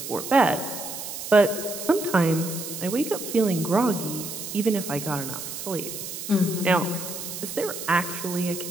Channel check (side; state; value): right; noise; hiss, 8 dB below the sound